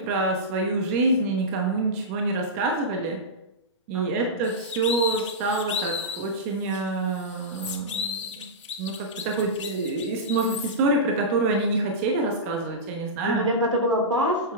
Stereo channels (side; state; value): both; normal; correlation -0.15